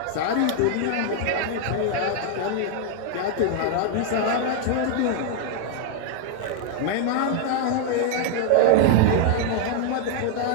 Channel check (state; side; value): different; both; correlation 0.00